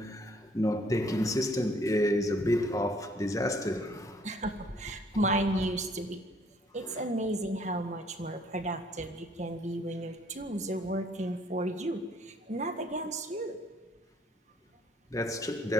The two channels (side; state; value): both; normal; correlation 0.62